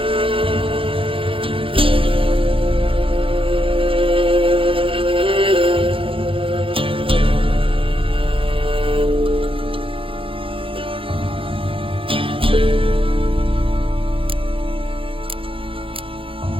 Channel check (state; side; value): late; left; 0.26 ms